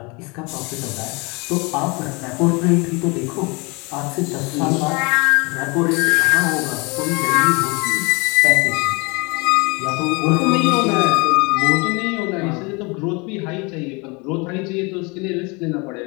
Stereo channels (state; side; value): quieter; right; 28.6 dB